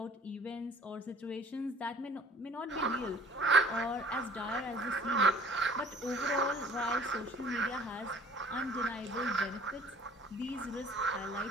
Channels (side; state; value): both; normal; correlation 0.52